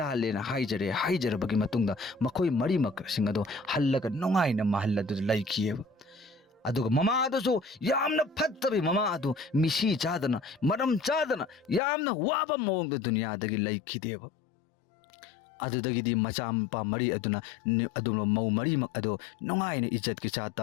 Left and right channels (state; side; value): drops out; right; at 11.8 s